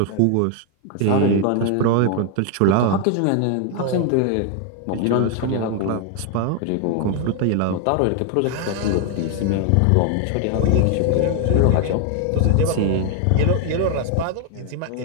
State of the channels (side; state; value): both; different; correlation 0.00